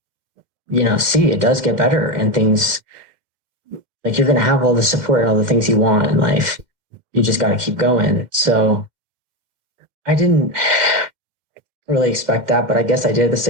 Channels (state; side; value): late; left; 2.1 ms